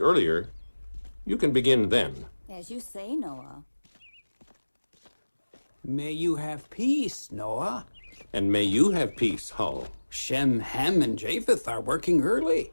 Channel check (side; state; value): both; inverted; correlation -1.00